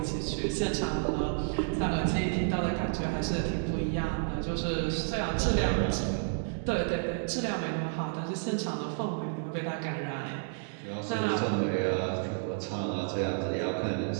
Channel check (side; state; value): left; silent; digital silence